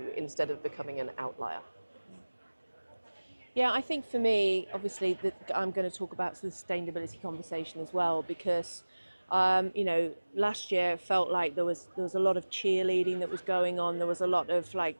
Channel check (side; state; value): both; inverted; correlation -1.00